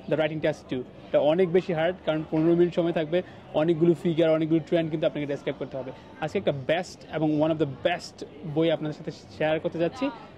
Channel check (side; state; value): both; identical; correlation 1.00